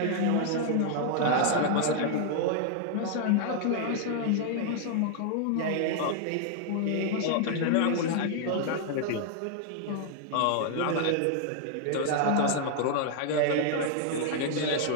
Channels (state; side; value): different; both; correlation 0.00